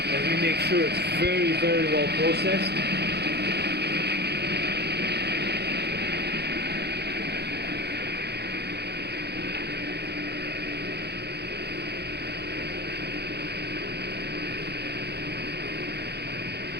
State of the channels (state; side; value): late; left; 0.48 ms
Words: And we make sure it's very, very well processed.